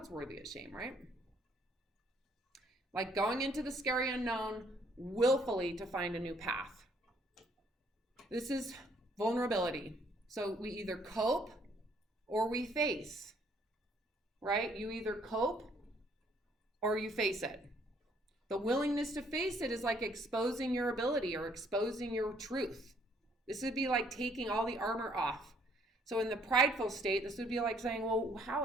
worthy of shame, right? Like going into the scary unknown willfully to find a new path. This is vulnerability. So we either cope or we face, right? You either cope or you face it. The willingness to face it is like exposing your ability or exposing your truth. This would be like taking all the armor off. So in the prideful state, this would be like saying, well,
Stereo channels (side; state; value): both; normal; correlation 0.64